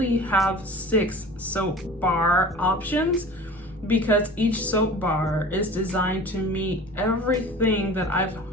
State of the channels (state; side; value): normal; both; correlation 0.40